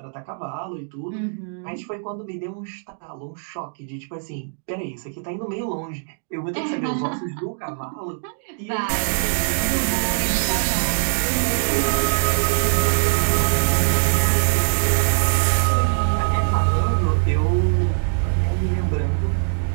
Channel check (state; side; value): silent; left; digital silence